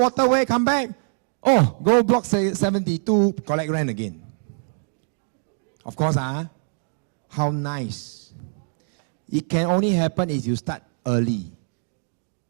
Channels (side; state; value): left; silent; digital silence